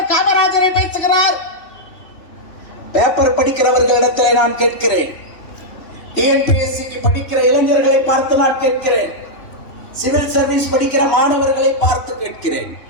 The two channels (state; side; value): late; right; 3.1 ms